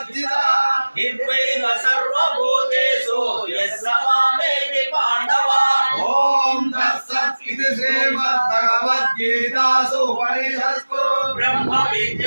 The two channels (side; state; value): both; inverted; correlation -1.00